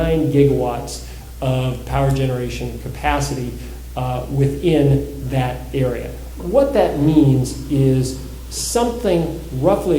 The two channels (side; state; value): both; identical; correlation 1.00